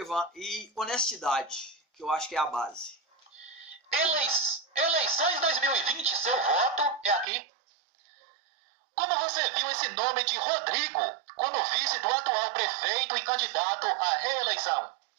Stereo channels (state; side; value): drops out; left; at 7.2 s